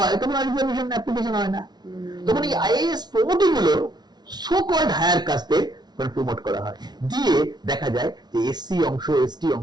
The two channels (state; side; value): late; left; 0.20 ms